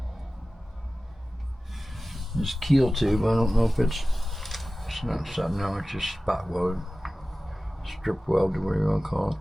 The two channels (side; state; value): both; normal; correlation 0.96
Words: This keel tube, I don't know if it's not something, no, it's just spot welded, strip welded, whatever you want to call it.